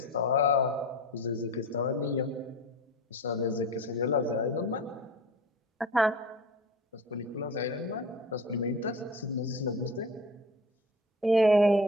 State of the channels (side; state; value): both; normal; correlation 0.36